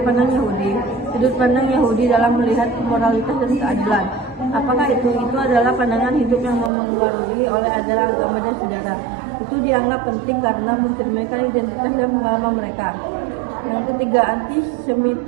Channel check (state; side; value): drops out; left; at 6.7 s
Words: pandang Yahudi? Sudut pandang Yahudi dalam melihat moralitas dan keadilan. Apakah itu? Itu adalah pandangan hidup yang memengaruhi oleh ajaran agama dan sejarah. Itu dianggap penting karena mencerminkan identitas dan pengalaman mereka. Yang ketiga,